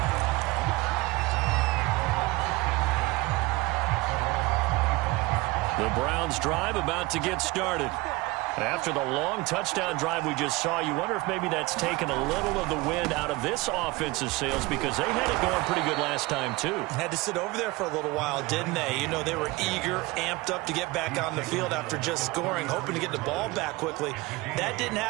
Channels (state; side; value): quieter; left; 22.2 dB